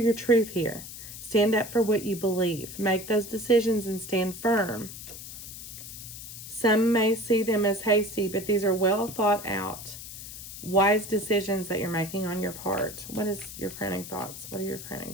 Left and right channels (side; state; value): left; noise; hiss, 12 dB below the sound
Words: truth here. Stand up for what you believe. Make those decisions and stand firm. Some may see them as hasty, but these are well thought out, wise decisions that you're making on your part. What is your crowning thoughts? What are your